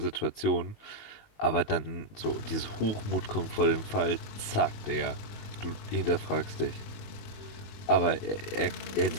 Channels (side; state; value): right; late; 19 ms